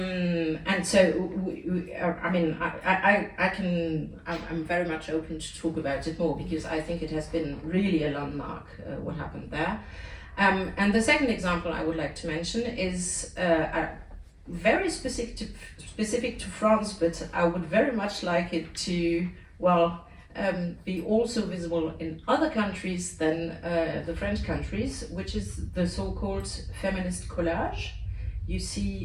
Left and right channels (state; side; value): identical; both; correlation 1.00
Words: so, I mean, I'm very much open to talk about it more because I think it has been really a landmark, what happened there. And the second example I would like to mention is very specific to France, but I would very much like it to, well, be also visible in other countries than the French countries, which is the so-called feminist collage you